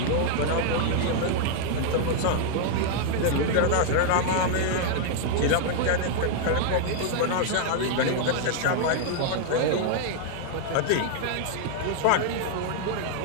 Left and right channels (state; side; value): different; both; correlation -0.01